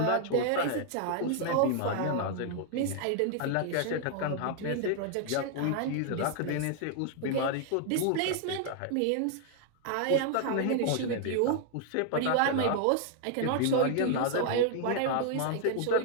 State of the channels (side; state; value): both; different; correlation 0.00